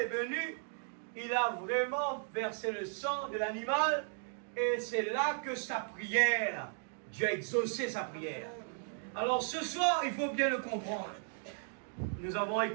venu, il a vraiment versé le sang de l'animal, et c'est là que sa prière, Dieu a exaucé sa prière. Alors ce soir, il faut bien le comprendre. Nous avons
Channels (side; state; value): left; silent; 54 dB below the other